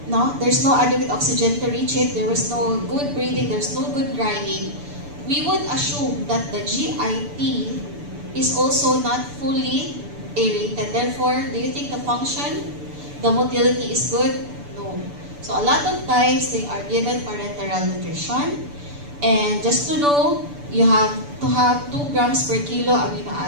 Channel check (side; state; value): left; late; 6.9 ms